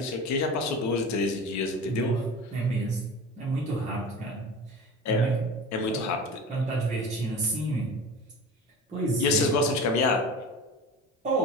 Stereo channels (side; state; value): both; normal; correlation 0.34